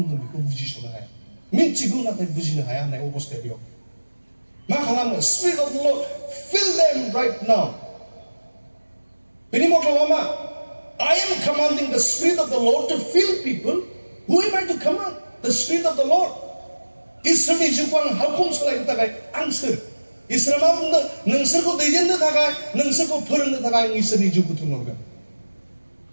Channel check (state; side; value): inverted; both; correlation -1.00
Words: बेखौ बुजिस'नो हाया मिथिगौ नाथाय बुजिनो हाया होननाय अबस्थाया बेयाव मा खालामो spirit of the lord fill them right now बेनि मथलबा मा I am commanding the Spirit of the Lord to fill people. Who am I to command? The Spirit of the Lord. इसोरनि जिउखौ आं हावखौ सोलायनो थाखाय आं सोर इसोरा मा बुंदों नोंसोरखौ दैदेननो थाखाय नोंसोरखौ फोरोंनो थाखाय आं इसोरनि जिउखौ थुनहरगोन